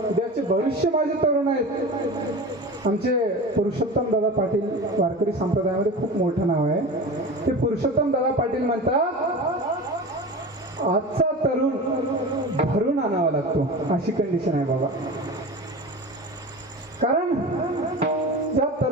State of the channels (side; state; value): both; normal; correlation 0.31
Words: उद्याचे भविष्य माझे तरुण आहेत. आमचे पुरुषोत्तम दादा पाटील वारकरी संप्रदायामध्ये खूप मोठं नाव आहे. ते पुरुषोत्तम दादा पाटील म्हणतात आजचा तरुण भरून आणावा लागतो, अशी कंडिशन आहे बाबा. कारण ज्या